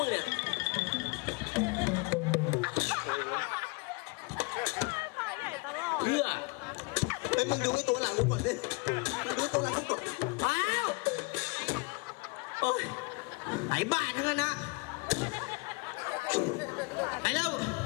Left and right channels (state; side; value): quieter; right; 29.5 dB